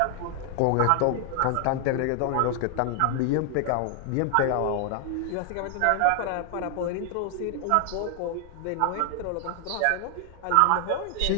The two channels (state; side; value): different; both; correlation 0.00